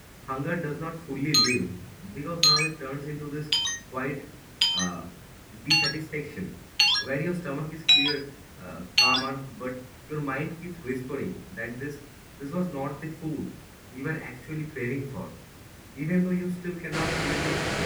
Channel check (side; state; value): both; identical; correlation 1.00